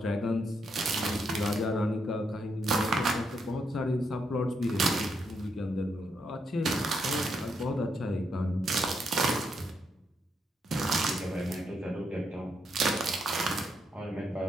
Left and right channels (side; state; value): both; normal; correlation 0.79